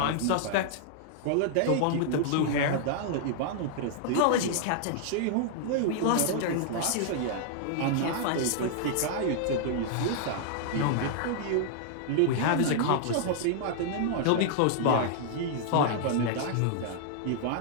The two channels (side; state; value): both; different; correlation -0.01